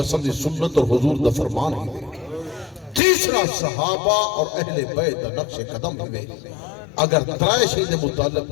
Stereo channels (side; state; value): right; drops out; at 3.0 s